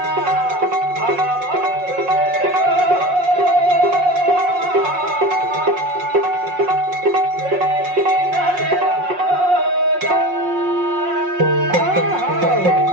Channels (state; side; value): late; left; 5.5 ms